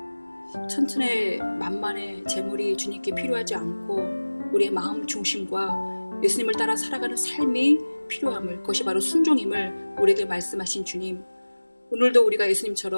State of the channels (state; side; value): inverted; both; correlation -1.00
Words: 천천의 만만의 재물이 주님께 필요하지 않고 우리의 마음 중심과 예수님을 따라 살아가는 삶이 필요함을, 그것이 바로 순종임을 우리에게 말씀하신 주님, 오늘도 우리가